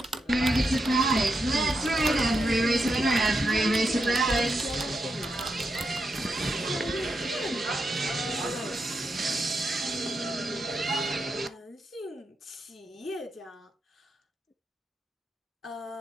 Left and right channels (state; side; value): normal; both; correlation 0.85